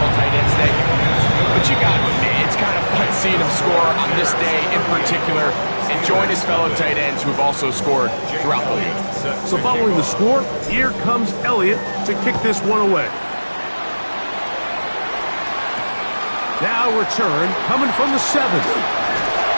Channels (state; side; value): inverted; both; correlation -1.00